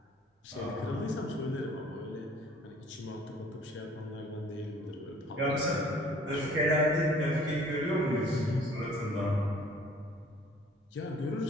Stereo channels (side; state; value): both; normal; correlation 0.54